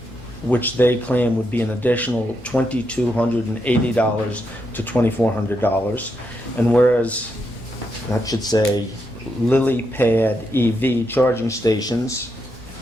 which they claim would be an additional $2,280 to $2,400. And whereas that should say Lily Pad EV charging stations.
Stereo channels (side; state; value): both; normal; correlation 0.82